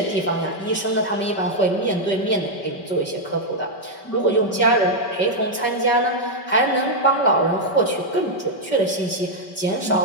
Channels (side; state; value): right; late; 5.2 ms